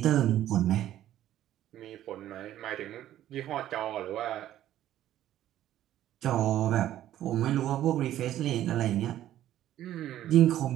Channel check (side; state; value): left; quieter; 12.6 dB